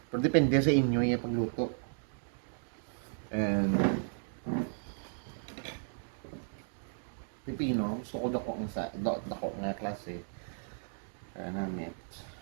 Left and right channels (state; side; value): silent; left; digital silence